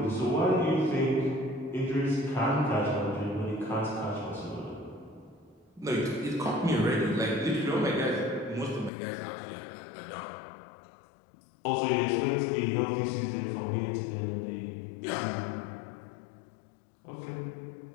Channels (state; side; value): drops out; right; at 8.9 s